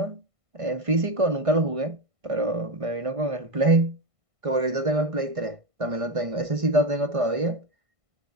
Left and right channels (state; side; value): late; left; 1.5 ms